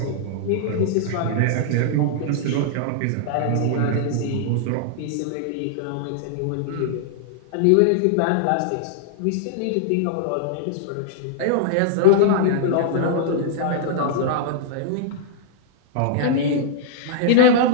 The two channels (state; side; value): different; both; correlation -0.01